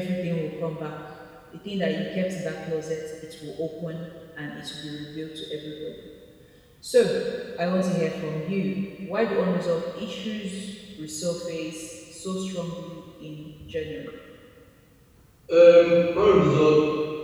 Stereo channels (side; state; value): both; identical; correlation 1.00